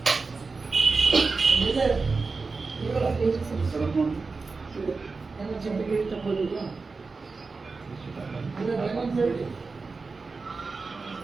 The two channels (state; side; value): quieter; left; 4.2 dB